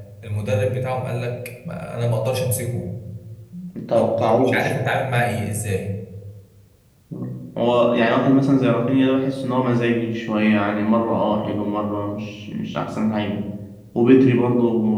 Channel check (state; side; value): identical; both; correlation 1.00